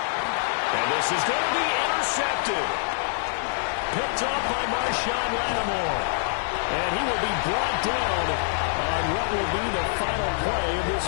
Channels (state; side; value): silent; right; 61 dB below the other